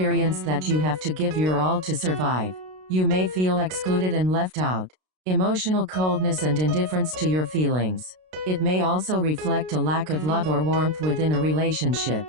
that you have to give your all to survive. You may feel excluded and left out. Emotional coldness and indifference to your feelings. It may also reflect a lack of love or warmth within a relationship.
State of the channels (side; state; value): left; late; 32 ms